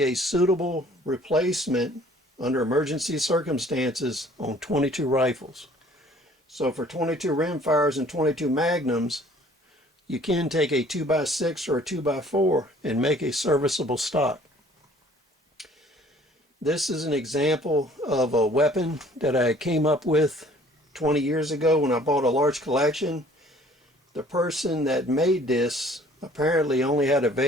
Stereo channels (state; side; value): normal; both; correlation 0.55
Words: a suitable replacement under emergency circumstances on 22 rifles. So for 22 rimfires and 22 Magnums, you can take a 2x6 or a 2x4 and make a serviceable stock. This is an example of a weapon that I came up with 20 years ago when I bought a large collection. The person that made this apparently only had